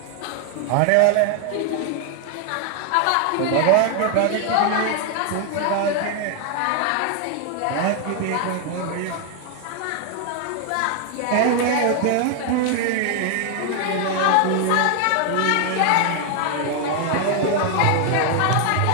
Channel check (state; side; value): different; both; correlation 0.00